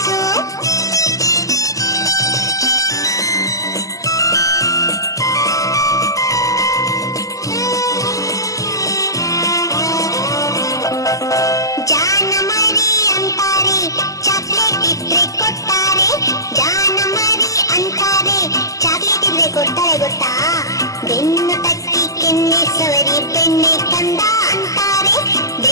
ಜಾನ ಮರಿ ಅಂತಾರೆ, ಚಾಕ್ಲೇಟ್ ಇದ್ರೆ ಕೊಡ್ತಾರೆ. ಜಾನ ಮರಿ ಅಂತಾರೆ, ಚಾಕ್ಲೇಟ್ ಇದ್ರೆ ಕೊಡ್ತಾರೆ ಗೊತ್ತಾ? ಬೆನ್ನು ತಟ್ಟಿ ಕೆನ್ನೆ ಸವರಿ ಬೆಣ್ಣೆ ಕಂದ ಅಂತಾರೆ.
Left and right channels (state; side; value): late; right; 0.16 ms